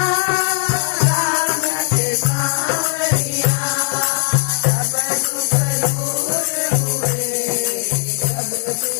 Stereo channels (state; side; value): silent; right; 58 dB below the other